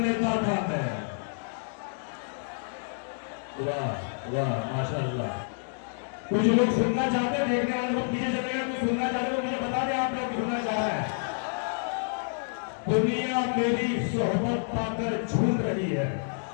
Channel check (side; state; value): right; silent; digital silence